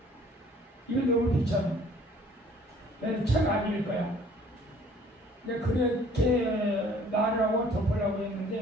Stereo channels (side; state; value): both; normal; correlation 0.56